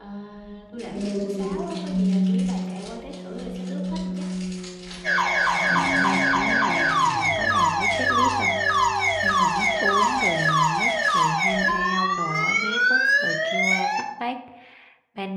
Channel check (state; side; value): identical; both; correlation 1.00